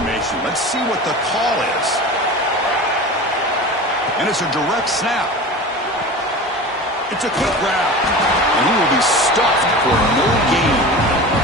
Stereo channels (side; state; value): both; normal; correlation 0.33